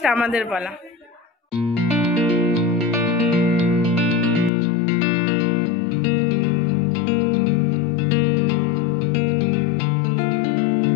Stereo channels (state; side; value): drops out; right; at 4.5 s